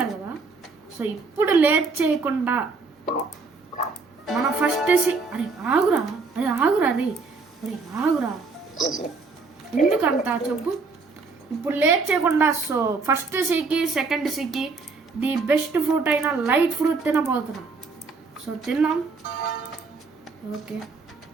కదా. సో ఇప్పుడు లేట్ చేయకుండా మన ఫస్ట్ అరే ఆగురా ఎందుకంతా చెప్పు. ఇప్పుడు లేట్ చేయకుండా సో ఫస్ట్ సీకి సెకండ్ సీకి ది బెస్ట్ ఫ్రూట్ అయిన లైట్ ఫ్రూట్ తినబోతున్నాం. సో తిన్నాం.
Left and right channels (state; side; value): quieter; left; 4.3 dB